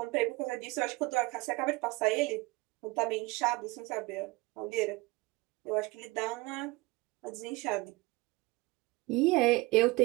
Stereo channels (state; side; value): quieter; left; 23.1 dB